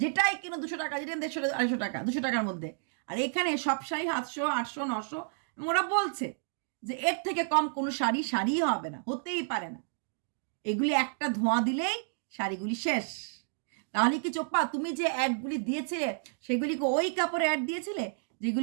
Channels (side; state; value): left; silent; digital silence